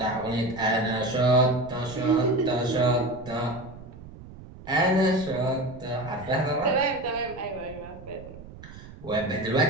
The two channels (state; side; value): noise; right; rumble, 16 dB below the sound